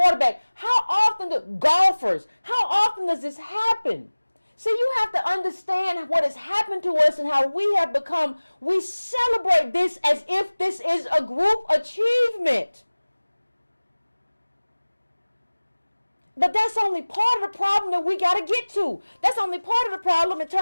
How often do golfers? How often does this happen? See, you have to understand what has happened to us and how we have become. We celebrate this as if this is a group achievement. But that's only part of the problem that we got to get to. That's only part of the problem in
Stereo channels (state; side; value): inverted; both; correlation -1.00